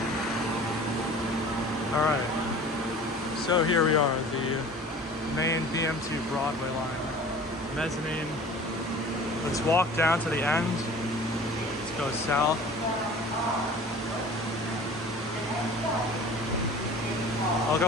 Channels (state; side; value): normal; both; correlation 0.43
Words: Alright. So here we are, the main BMT Broadway line. Mezzanine. Let's walk down to the end. Let's go south. I'll